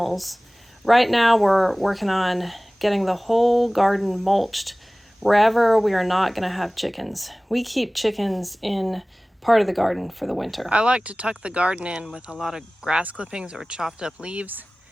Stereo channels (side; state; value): both; normal; correlation 0.98